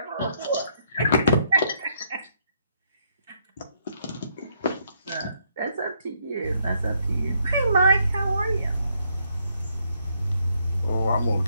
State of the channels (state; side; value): inverted; both; correlation -0.72